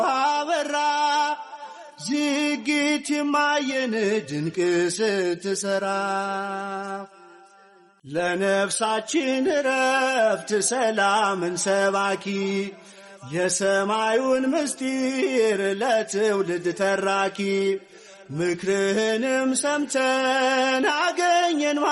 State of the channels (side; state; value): both; identical; correlation 1.00